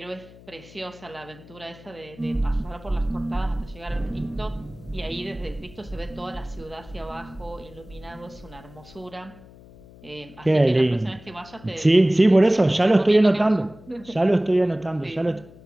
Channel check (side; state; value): left; noise; hum, 22 dB below the sound